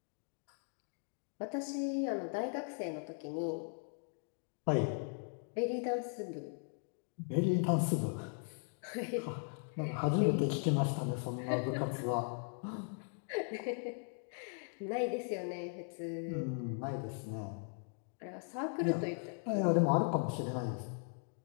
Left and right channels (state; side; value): silent; right; 52 dB below the other